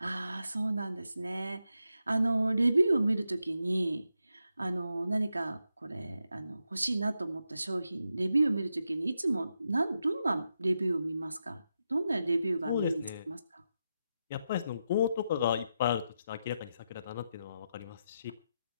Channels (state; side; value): inverted; both; correlation -0.86